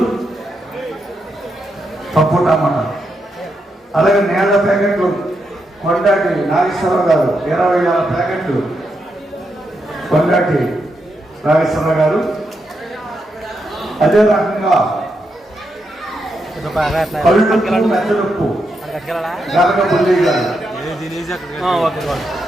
పప్పుటమ్మన్నారు. అలాగే నేల ప్యాకెట్లు కొండాటి నాగేశ్వరరావు గారు 20,000 ప్యాకెట్లు కొండాటి నాగేశ్వరరావు గారు. అదే రకంగా మెత్తలుప్పు గరగపల్లి గారు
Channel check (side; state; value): both; normal; correlation 0.83